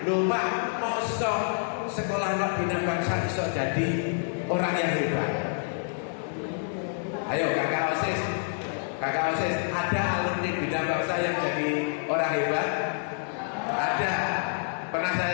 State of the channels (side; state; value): right; silent; digital silence